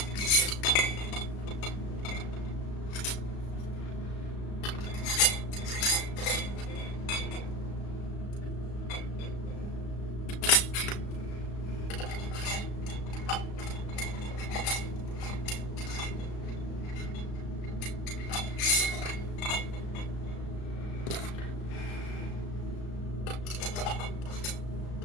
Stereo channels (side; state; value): right; late; 35 ms